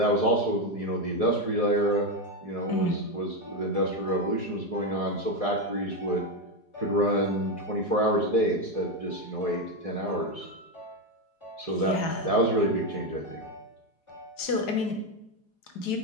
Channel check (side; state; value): right; late; 4.9 ms